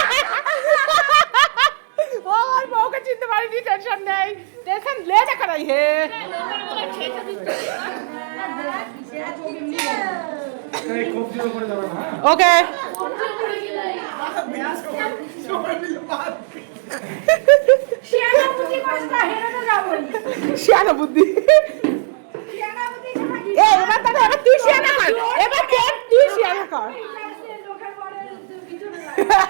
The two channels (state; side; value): silent; left; digital silence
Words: ও আমার বউকে চিনতে পারিনি, টেনশন নেই, টেনশন লে দেখা নাই হে। ওকে শিয়ানা বুদ্ধি এবার তাহলে এবার তুই শিয়ানা কর, এবার তুই শিয়ানা কর।